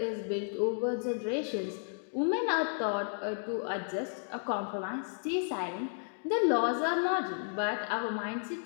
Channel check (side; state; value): right; silent; digital silence